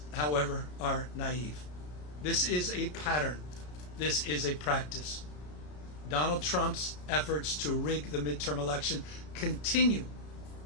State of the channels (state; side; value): late; right; 33 ms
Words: however, are naive. This is a pattern. This is a practice. Donald Trump's efforts to rig the midterm election continue